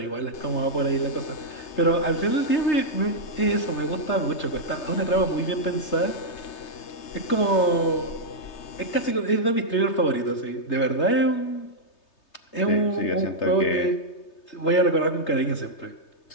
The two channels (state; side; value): late; right; 3.3 ms